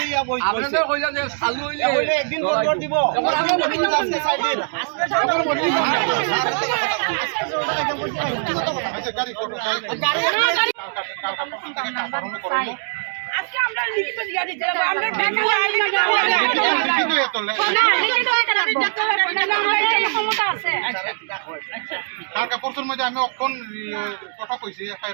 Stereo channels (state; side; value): silent; left; digital silence